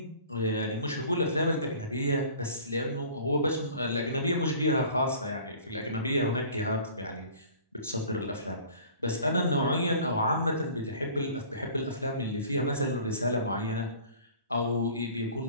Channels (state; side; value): inverted; both; correlation -0.47